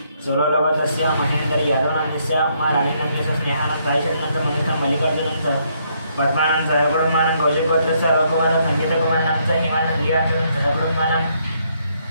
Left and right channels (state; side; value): inverted; both; correlation -0.72